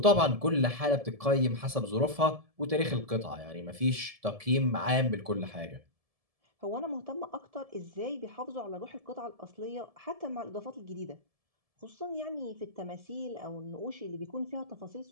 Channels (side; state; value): left; late; 1.7 ms